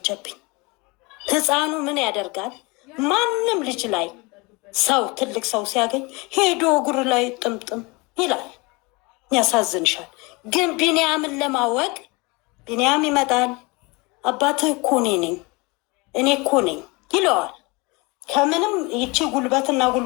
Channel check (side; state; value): right; quieter; 26.4 dB